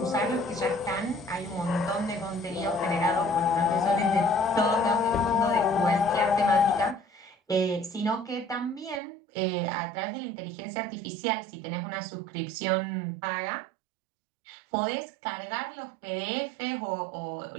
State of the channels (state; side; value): drops out; left; at 9.0 s